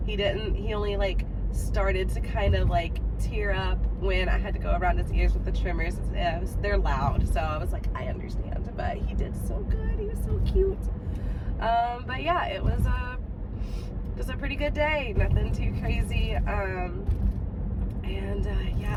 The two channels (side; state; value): both; identical; correlation 1.00